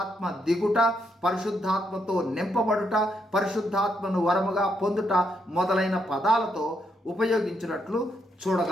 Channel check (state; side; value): normal; both; correlation 0.78